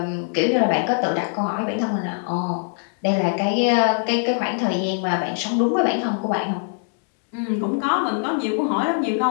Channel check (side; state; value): right; silent; 60 dB below the other